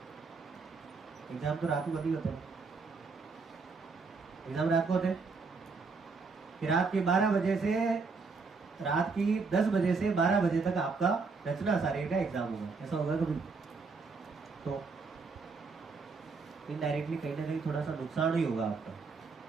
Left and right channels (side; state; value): left; quieter; 4.5 dB